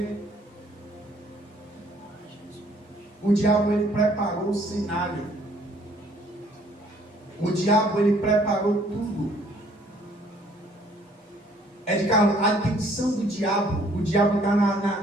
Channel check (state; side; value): normal; both; correlation 0.61